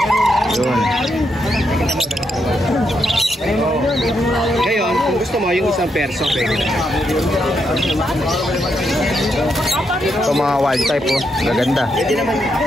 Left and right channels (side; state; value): both; normal; correlation 0.80